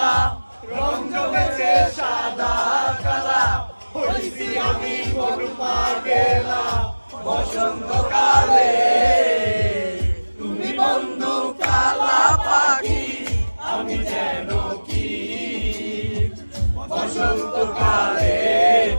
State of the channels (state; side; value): inverted; both; correlation -1.00